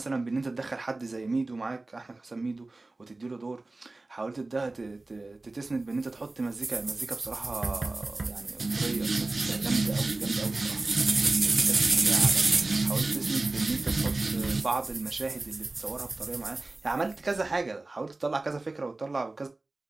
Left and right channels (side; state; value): left; quieter; 3.1 dB